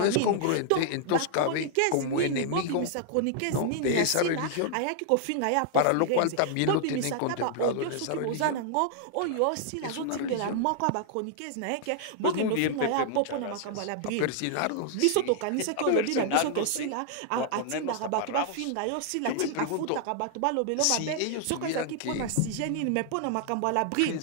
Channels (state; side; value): different; both; correlation -0.01